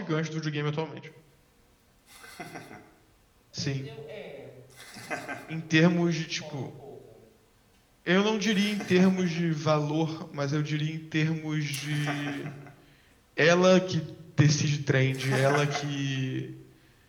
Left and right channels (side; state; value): both; identical; correlation 1.00